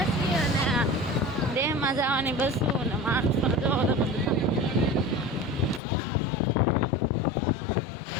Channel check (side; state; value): right; drops out; at 5.8 s